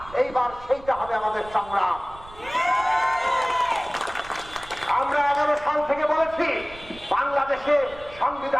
এইবার সেইটা হবে আমাদের সংগ্রাম। আমরা 11 সাল থেকে বলেছি বাংলাদেশে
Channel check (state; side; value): noise; right; rumble, 19 dB below the sound